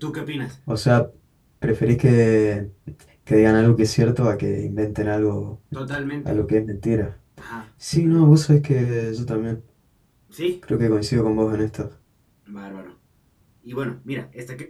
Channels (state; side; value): identical; both; correlation 1.00